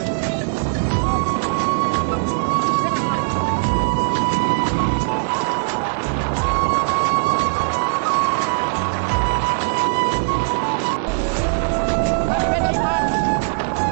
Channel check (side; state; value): left; silent; 66 dB below the other